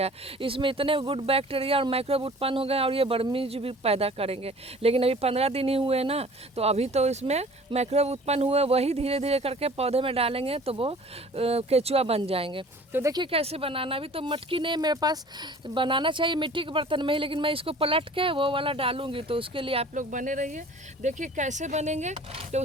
है। इसमें इतने गुड बैक्टीरिया और माइक्रोब उत्पन्न हो गए, और ये वर्मीज भी पैदा करेंगे। लेकिन अभी 15 दिन ही हुए ना, तो अभी तो इसमें माइक्रोब उत्पन्न हुए, वही धीरे धीरे करके पौधे में डालेंगे तो वो केचुआ बन जाएंगे। तो देखिए कैसे बनाना। अभी तो मटकी नहीं मेरे पास, बनाना चाहिए मिट्टी के बर्तन में ही, लेकिन मैं इसको पलट के वो वाला डालूंगी। तो उसके लिए आप लोग बने रहिए, देखिए कैसे बनेंगे। तो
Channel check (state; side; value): normal; both; correlation 0.47